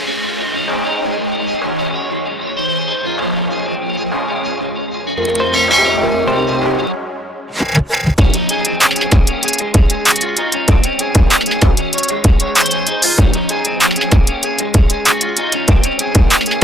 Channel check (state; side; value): normal; both; correlation 0.72